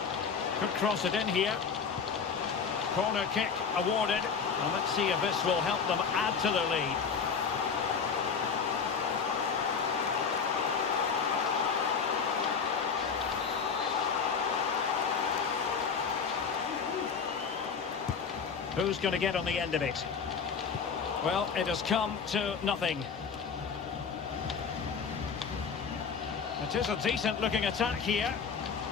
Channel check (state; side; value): quieter; right; 6.0 dB